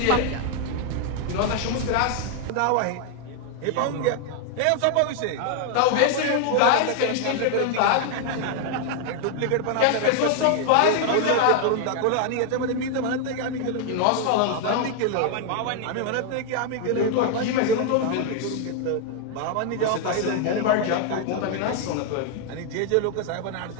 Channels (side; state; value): both; different; correlation 0.00